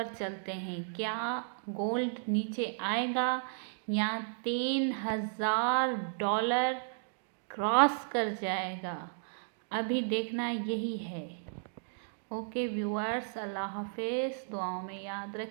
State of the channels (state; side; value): silent; left; digital silence